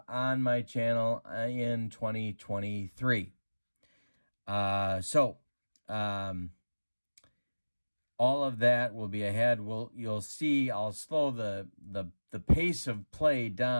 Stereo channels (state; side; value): inverted; both; correlation -1.00